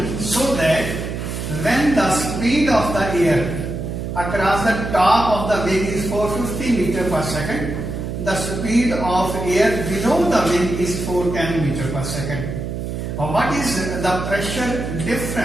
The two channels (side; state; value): right; noise; hum, 5 dB below the sound